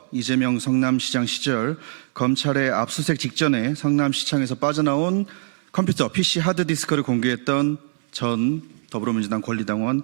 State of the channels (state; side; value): silent; left; 64 dB below the other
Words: 이재명 성남시장 시절 검찰의 압수수색 직전에 성남시청에서 빠져나온 컴퓨터 PC 하드디스크를 공개했던 전 더불어민주당 권리당원